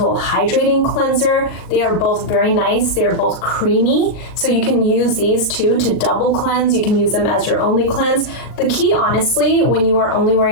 Hydrating Cleanser. They are both very nice. They are both creamy. So you can use these two to double cleanse. You can use them as your only cleanse. The key, honestly, when you are only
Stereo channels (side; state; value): right; late; 39 ms